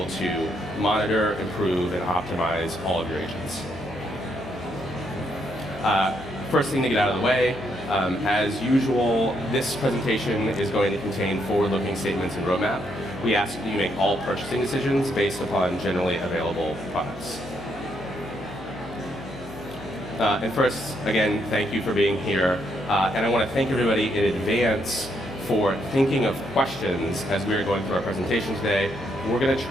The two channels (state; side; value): noise; left; hum, 17 dB below the sound